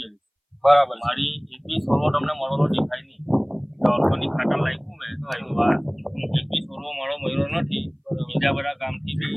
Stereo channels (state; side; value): identical; both; correlation 1.00